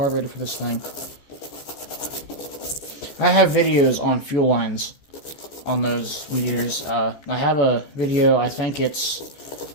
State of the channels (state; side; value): late; right; 14 ms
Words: for this thing. I have videos on fuel lines on those weed eaters. I have a video, I think it's